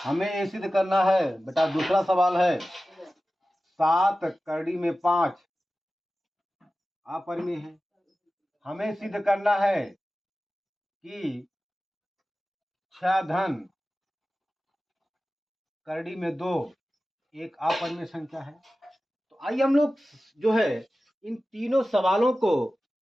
हमें ये सिद्ध करना है बेटा, दूसरा सवाल है 7/5 अपरिमेय है। हमें सिद्ध करना है कि 6/2 एक अपरिमेय संख्या है। तो आइए हम लोग जो है इन तीनों सवालों को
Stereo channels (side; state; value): both; normal; correlation 0.95